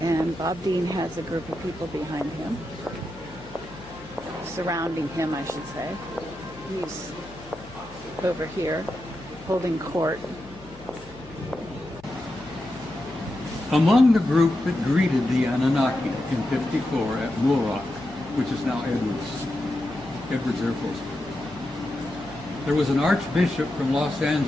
And Bob Dean has a group of people behind him, surrounding him, I should say. He's over here holding court. Among the group that greeted the Anunnaki in '54 at Muroc, which is now Edwards Air Force Base, there was an archbishop from Los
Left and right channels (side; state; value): left; noise; hum, 20 dB below the sound